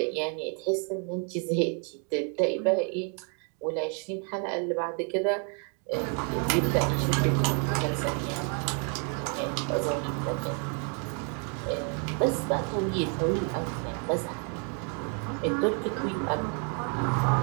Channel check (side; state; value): left; quieter; 39.7 dB